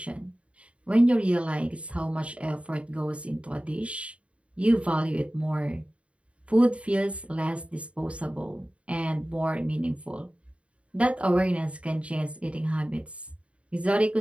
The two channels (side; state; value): left; late; 0.062 ms